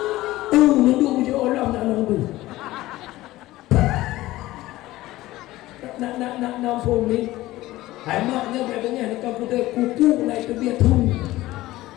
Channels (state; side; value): quieter; right; 17.1 dB